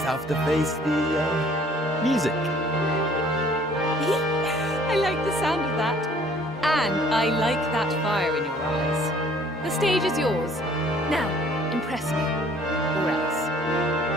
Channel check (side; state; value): both; normal; correlation 0.56